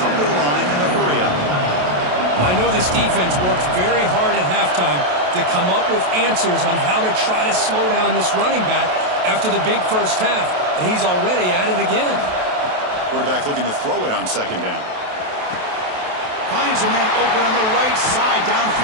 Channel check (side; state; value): left; late; 28 ms